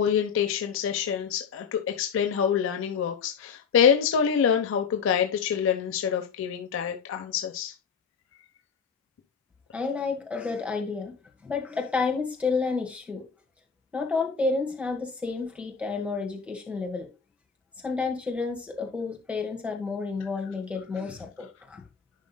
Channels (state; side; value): quieter; right; 6.2 dB